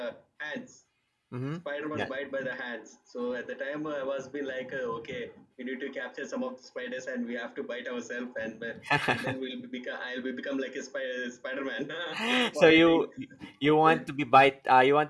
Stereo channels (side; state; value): both; identical; correlation 1.00